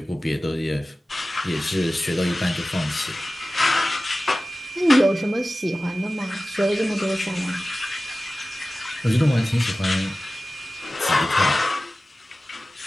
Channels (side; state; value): both; normal; correlation 0.96